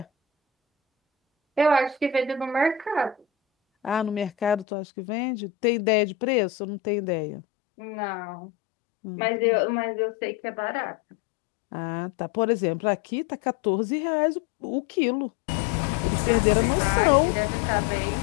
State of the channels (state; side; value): drops out; right; at 4.7 s